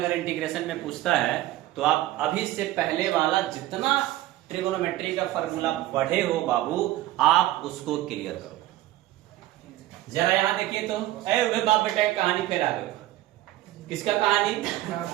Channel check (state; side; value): quieter; left; 15.5 dB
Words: इंटीग्रेशन में पूछता है तो आप अभी से पहले वाला जितना ट्रिगोनोमेट्री का फॉर्मूला पढ़े हो बाबू, आप उसको क्लियर करो। जरा यहां देखिए तो, बाप बेटा की कहानी फिर आ गई। किसका कहानी?